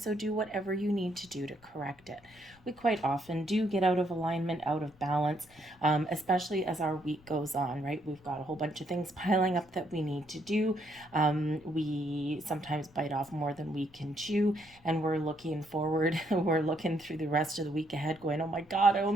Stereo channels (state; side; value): noise; left; rumble, 27 dB below the sound